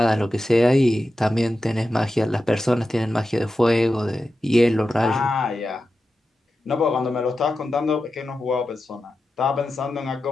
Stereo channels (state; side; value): normal; both; correlation 0.91